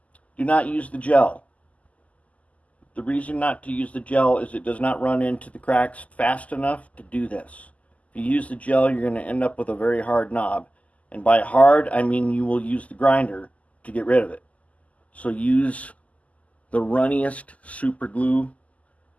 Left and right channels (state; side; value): late; right; 0.070 ms